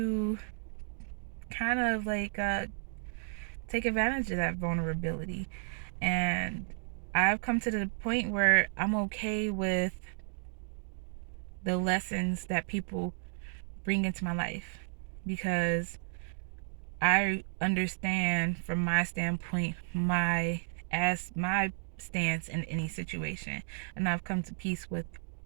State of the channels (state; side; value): silent; left; digital silence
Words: kind of take advantage of that vulnerability, and I've come to the point where I'm okay with the lessons that people bring into my life because I understand from my standpoint my stance in any situation, and I've come to peace with